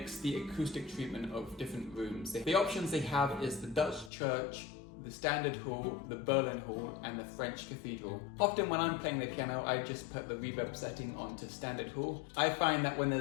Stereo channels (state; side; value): drops out; right; at 4.1 s